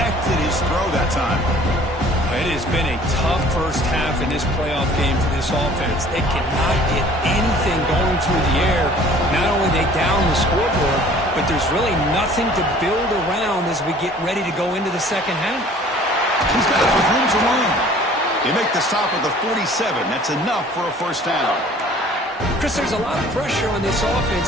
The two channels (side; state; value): both; normal; correlation 0.51